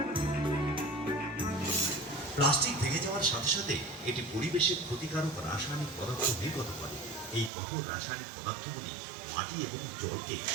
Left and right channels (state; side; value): drops out; left; at 7.5 s